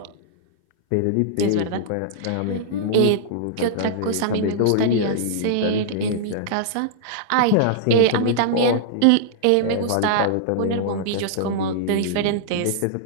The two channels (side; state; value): both; different; correlation -0.02